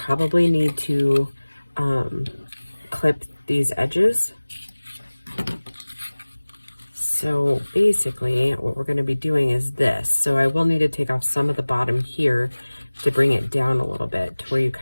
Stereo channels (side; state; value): both; inverted; correlation -1.00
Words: need to clip these edges. So basically what we're going to be doing is this. So I will need to take off some of the bottom here to bring it down a little bit to where you